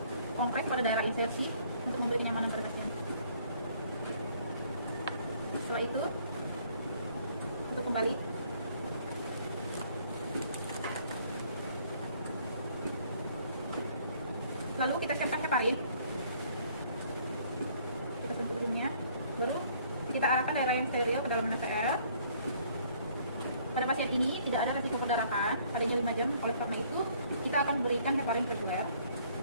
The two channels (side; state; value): both; inverted; correlation -0.61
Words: kompres pada daerah insersi untuk memberi kenyamanan pada pasien. Setelah itu untuk kembali lalu kita siapkan heparin, kita sentuh ujungnya, baru kita arahkan daerah yang steril ke dalam NaCl. Pada pasien ini tidak ada resiko perdarahan, adanya 5 jam, oleh karena itu kita akan berikan heparin reguler.